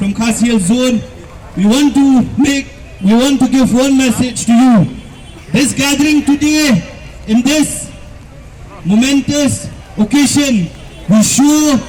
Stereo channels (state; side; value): identical; both; correlation 1.00